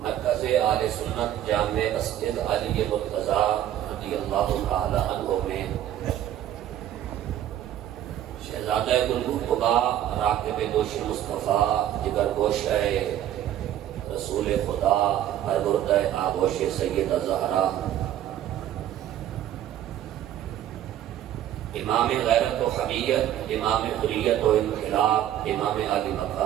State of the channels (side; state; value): left; quieter; 11.7 dB